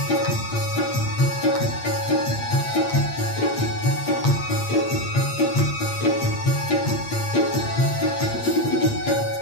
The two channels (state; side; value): late; right; 8.6 ms